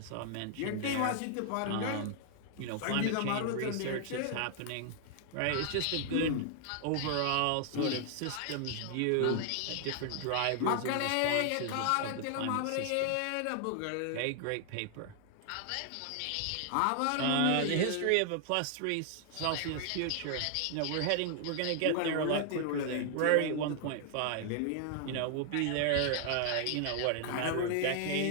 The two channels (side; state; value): both; different; correlation 0.00